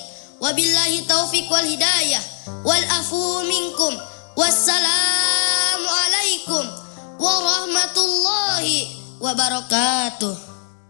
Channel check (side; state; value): right; silent; digital silence